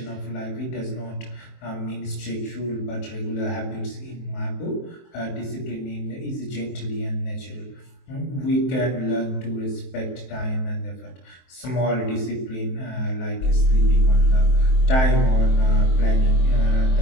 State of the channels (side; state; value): right; late; 23 ms